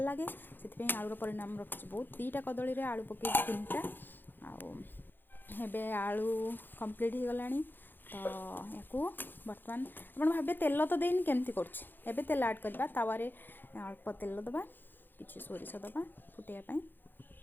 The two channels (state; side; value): late; right; 0.094 ms